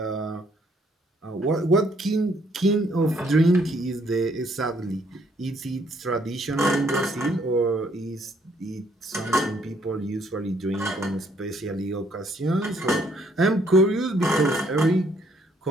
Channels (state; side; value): normal; both; correlation 0.67